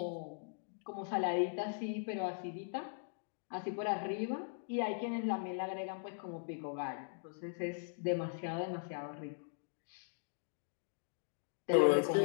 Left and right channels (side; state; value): right; silent; digital silence